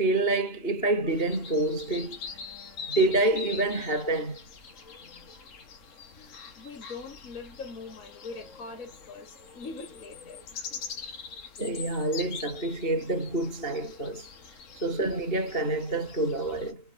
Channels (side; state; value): right; late; 3.7 ms